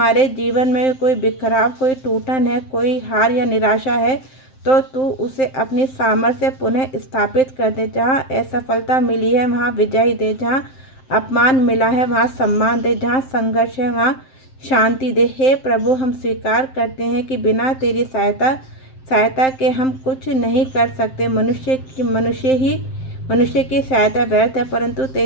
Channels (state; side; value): late; right; 7.6 ms